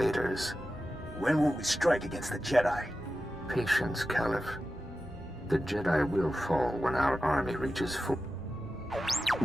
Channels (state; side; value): noise; left; rumble, 21 dB below the sound